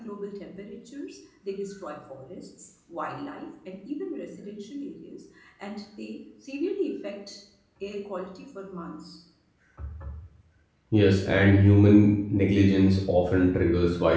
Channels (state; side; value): identical; both; correlation 1.00